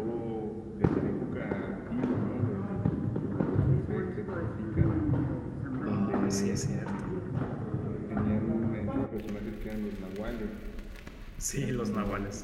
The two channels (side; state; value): both; identical; correlation 1.00